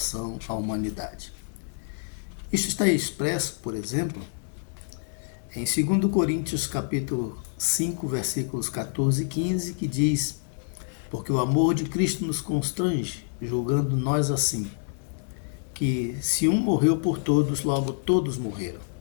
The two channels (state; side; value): silent; right; digital silence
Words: à humanidade. Isso está expresso, por exemplo, em 2 Coríntios capítulo 5, versículos 14 e 15, que diz: porque o amor de Cristo nos constrange, julgando nós assim, que se um morreu por todos, logo todos morreram.